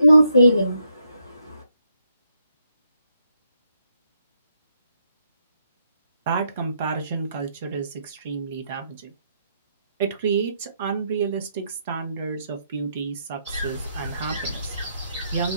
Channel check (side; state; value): both; inverted; correlation -0.77